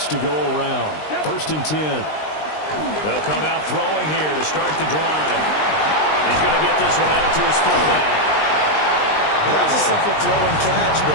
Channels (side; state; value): right; late; 20 ms